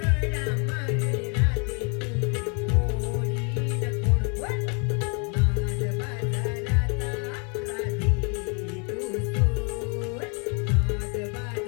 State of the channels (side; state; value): right; quieter; 36.6 dB